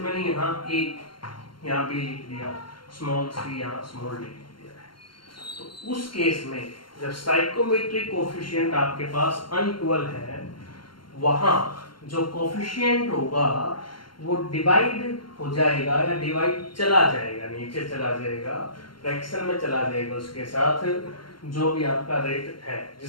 यहाँ बी लिख दिया, स्मॉल सी यहाँ स्मॉल डी लिख दिया है, तो उस केस में जब स्टाइकोमेट्रिक कोएफिशिएंट आपके पास अनइक्वल है, वहां जो कोएफिशिएंट होगा वो डिवाइड हो जाएगा या डिवाइड चला जाएगा, नीचे चला जाएगा, फ्रैक्शन में चला जाएगा उसके साथ जो भी आपका रेट है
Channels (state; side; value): late; right; 0.72 ms